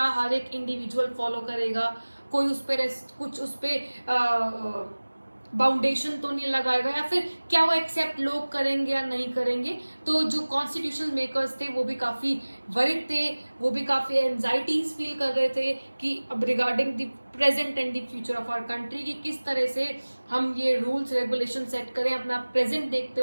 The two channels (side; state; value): both; inverted; correlation -1.00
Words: हर एक इंडिविजुअल फॉलो करेगा, कोई उस पर कुछ उस पर बाउंडेशन तो नहीं लगाएगा, या फिर क्या वो एक्सेप्ट लोग करेंगे या नहीं करेंगे। तो जो कॉन्स्टिट्यूशनल मेकर्स थे वो भी काफ़ी वरिड थे, वो भी काफ़ी एंजाइटीज फील कर रहे थे कि अब regarding the present and the future of our country की किस तरह से हम ये रूल्स रेगुलेशन सेट करें, अपना प्रेजेंट देखते